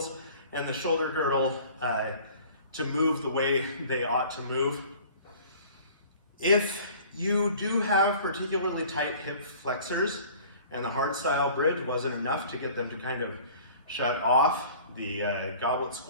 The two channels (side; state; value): both; inverted; correlation -0.48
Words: and the shoulder girdle to move the way they ought to move. If you do have particularly tight hip flexors, and the hardstyle bridge wasn't enough to get them to kind of shut off. The goblet